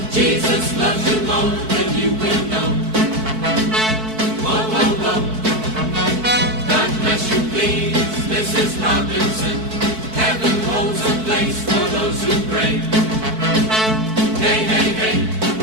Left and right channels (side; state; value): left; late; 4.6 ms